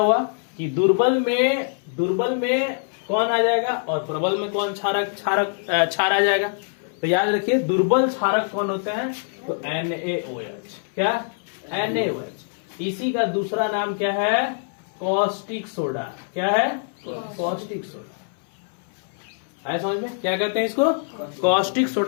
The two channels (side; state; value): right; silent; 63 dB below the other